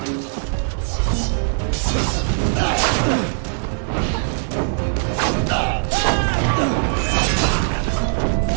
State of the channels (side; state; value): left; silent; digital silence